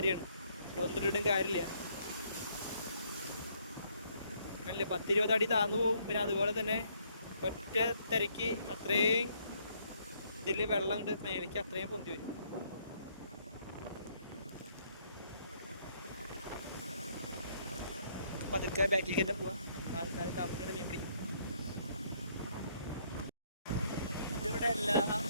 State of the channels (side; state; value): both; inverted; correlation -0.68